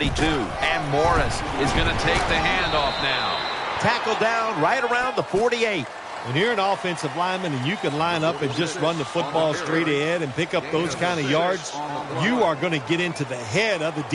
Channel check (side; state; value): both; identical; correlation 1.00